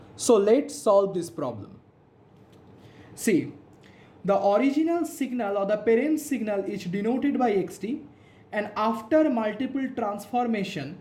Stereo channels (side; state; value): both; identical; correlation 1.00